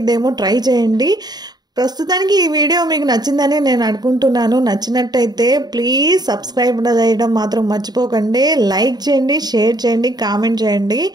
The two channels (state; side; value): late; left; 0.20 ms